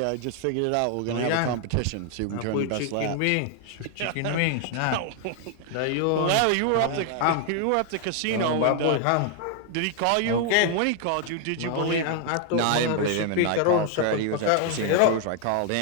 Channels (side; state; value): both; different; correlation 0.00